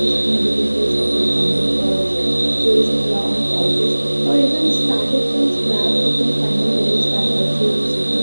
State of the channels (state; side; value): inverted; both; correlation -1.00